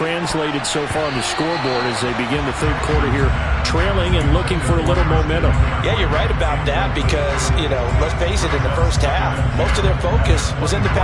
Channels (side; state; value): both; identical; correlation 1.00